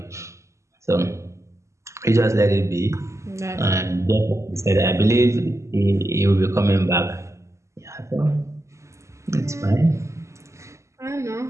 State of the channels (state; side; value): late; left; 0.14 ms